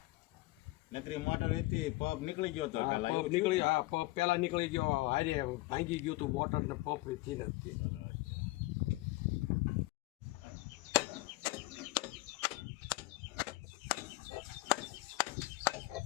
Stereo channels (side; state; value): right; quieter; 20.6 dB